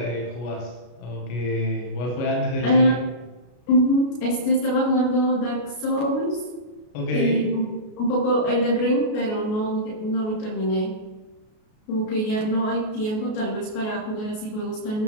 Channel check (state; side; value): late; right; 33 ms